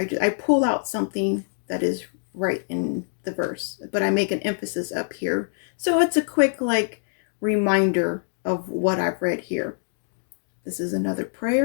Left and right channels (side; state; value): right; silent; digital silence